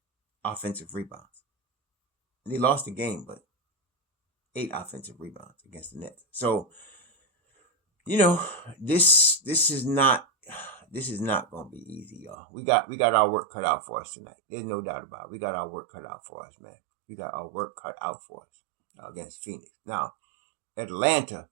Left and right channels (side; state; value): left; drops out; at 12.4 s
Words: offensive rebounds. And they lost the game, but 8 offensive rebounds against the Nets. So, this is not going to be easy, y'all. We got our work cut out for us tonight. There's no doubt about it. We got our work cut out for us, man. We got our work cut out for us against Phoenix. Now, Atlanta